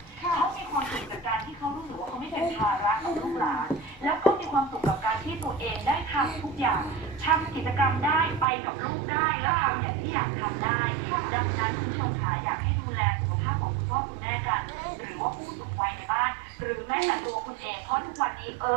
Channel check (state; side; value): drops out; left; at 8.5 s